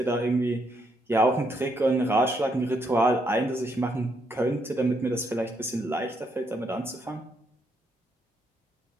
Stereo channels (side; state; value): both; normal; correlation 0.75